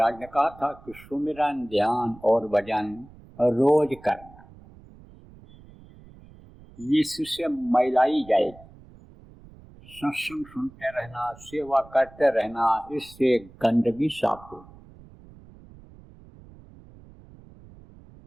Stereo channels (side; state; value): right; noise; rumble, 22 dB below the sound